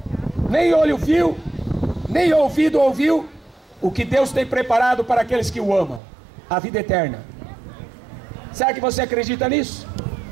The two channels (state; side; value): drops out; left; at 6.0 s